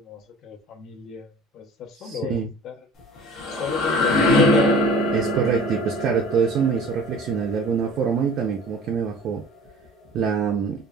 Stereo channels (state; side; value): normal; both; correlation 0.44